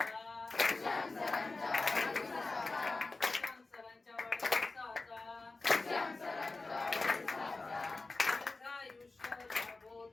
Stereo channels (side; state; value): right; quieter; 3.5 dB